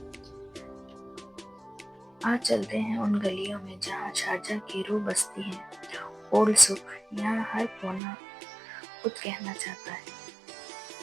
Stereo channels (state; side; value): drops out; left; at 8.0 s